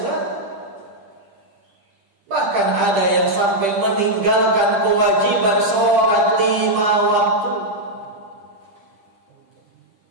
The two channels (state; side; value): late; left; 10 ms